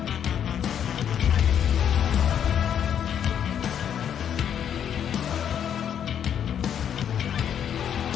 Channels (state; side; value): quieter; right; 9.0 dB